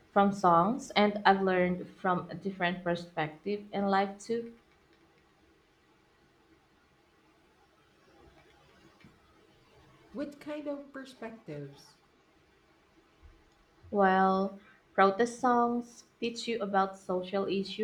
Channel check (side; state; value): both; identical; correlation 1.00